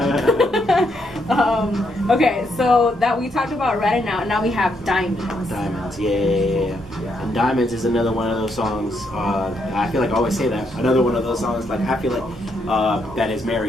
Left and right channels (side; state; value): both; normal; correlation 0.76